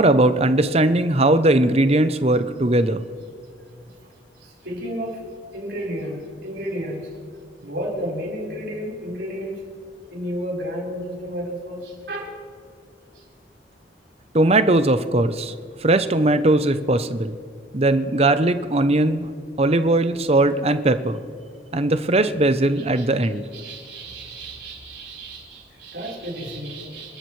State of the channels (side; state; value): both; normal; correlation 0.52